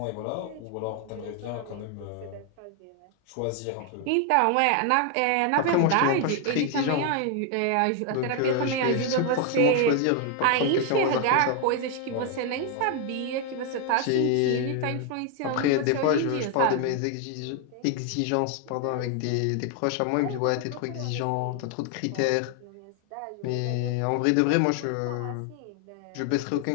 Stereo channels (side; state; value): both; different; correlation 0.00